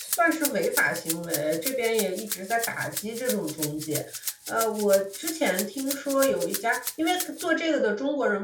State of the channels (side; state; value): both; identical; correlation 1.00